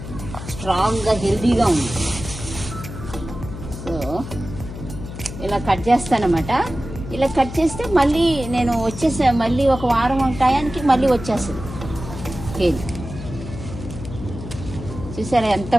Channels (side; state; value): left; noise; hum, 10 dB below the sound